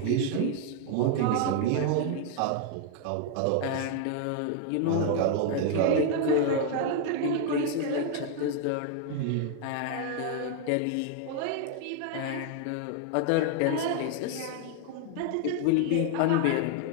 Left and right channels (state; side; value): different; both; correlation 0.00